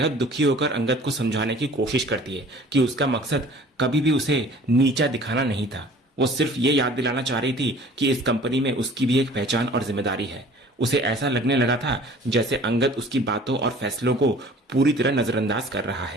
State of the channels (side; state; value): both; normal; correlation 0.48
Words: दुखी होकर अंगद को समझाने की कोशिश करती है कि उसका मकसद कभी भी उसे नीचा दिखाना नहीं था। वो सिर्फ ये याद दिलाना चाह रही थी कि इस कंपनी में उसकी भी एक पहचान और जिम्मेदारी है। उसे ऐसा लगने लगा था जैसे अंगद उसकी बातों और फैसलों को पूरी तरह नजरअंदाज कर रहा